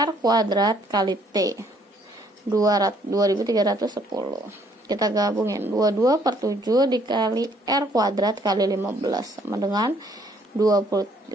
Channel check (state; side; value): normal; both; correlation 0.64